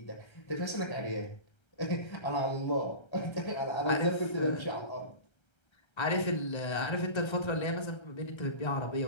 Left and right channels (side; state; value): right; late; 1.3 ms